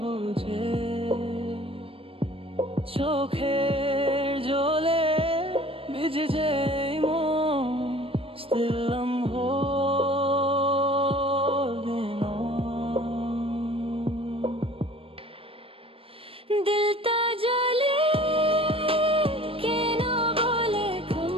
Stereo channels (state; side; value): late; left; 0.27 ms